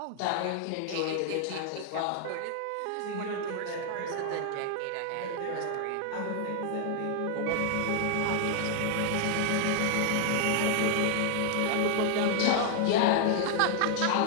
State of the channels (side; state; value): both; different; correlation 0.00